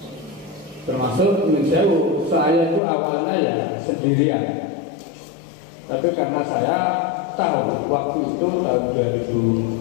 Termasuk menjauh, saya itu awalnya ya sendirian, tapi karena saya tahu waktu itu tahun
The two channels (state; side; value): drops out; right; at 2.8 s